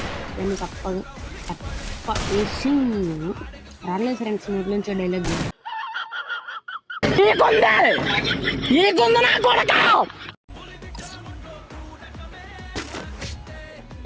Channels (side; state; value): both; identical; correlation 1.00